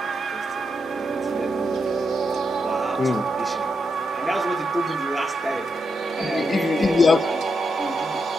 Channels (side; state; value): both; normal; correlation 0.83